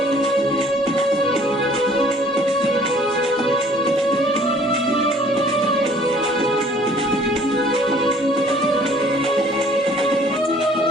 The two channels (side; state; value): both; normal; correlation 0.55